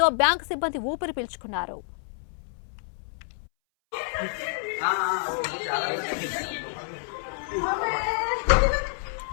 బ్యాంకు సిబ్బంది ఊపిరి పీల్చుకున్నారు.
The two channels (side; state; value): right; silent; 59 dB below the other